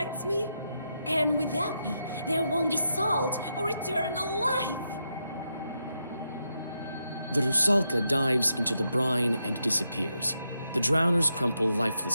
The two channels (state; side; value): inverted; both; correlation -0.84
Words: me. And without me, there won't be salt or eternal life. The Rusalka dives into the brine and disappears. The drowners crumple